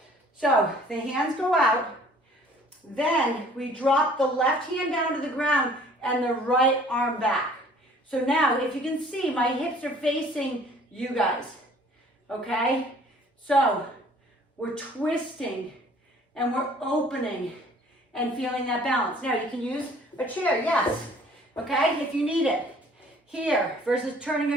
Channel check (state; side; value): normal; both; correlation 0.54